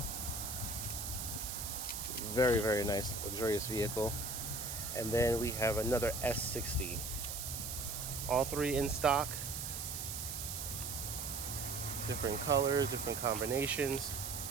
Very, very nice, luxurious vehicle. And then we have another S60. All three in stock. Different colors, different combinations.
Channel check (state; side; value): noise; right; hiss, 5 dB below the sound